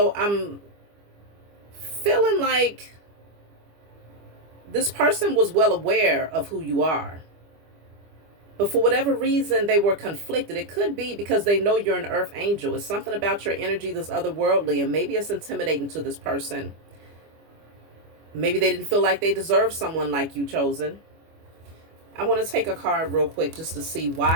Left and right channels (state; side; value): late; left; 25 ms